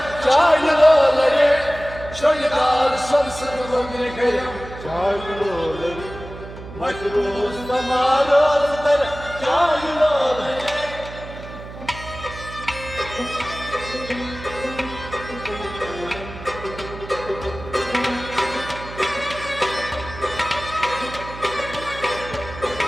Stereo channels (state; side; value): noise; right; hum, 13 dB below the sound